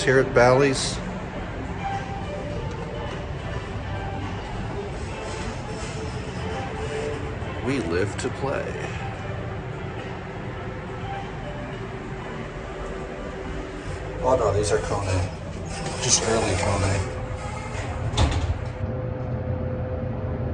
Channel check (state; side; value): identical; both; correlation 1.00